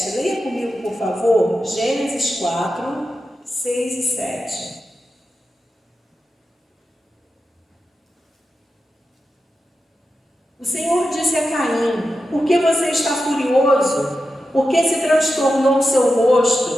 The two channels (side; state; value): both; normal; correlation 0.90